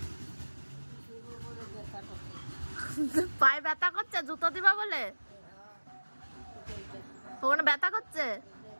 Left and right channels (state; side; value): inverted; both; correlation -1.00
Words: পায়ে ব্যথা করছে জুতো দিবা বলে? ওখানে ব্যথা করছে,